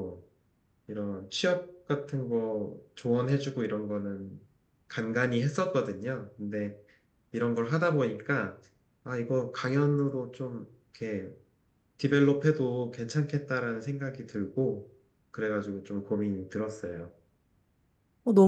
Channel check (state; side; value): identical; both; correlation 1.00